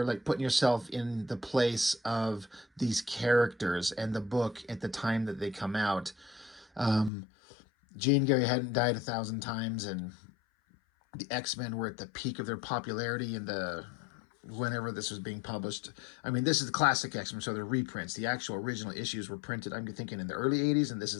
like, putting yourself in the place of these characters and the book at the time that they come out. Jean Grey hadn't died 1,000 times, and the X-Men were at the peak of their popularity in the whenever this was being published. I mean, this is the classic X-Men, so they're reprints. The actual original issues were printed, I'm thinking, in the early 80s, and this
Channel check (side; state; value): right; drops out; at 7.1 s